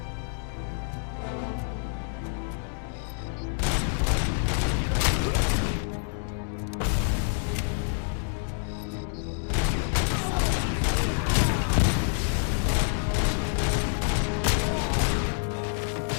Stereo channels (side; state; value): right; silent; 60 dB below the other